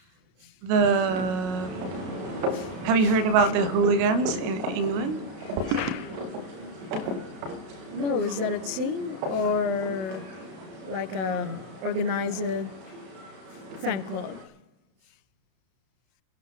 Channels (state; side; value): late; left; 32 ms